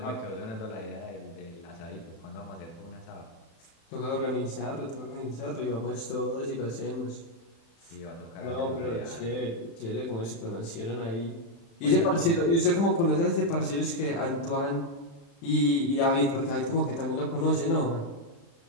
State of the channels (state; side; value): late; right; 35 ms